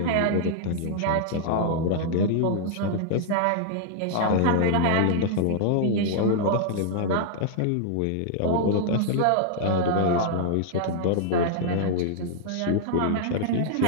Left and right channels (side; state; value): both; different; correlation -0.01